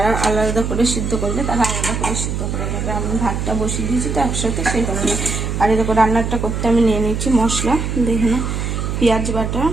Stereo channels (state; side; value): noise; right; hum, 2 dB below the sound